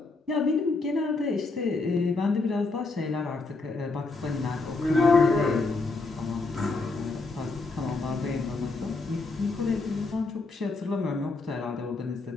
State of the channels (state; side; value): quieter; right; 3.6 dB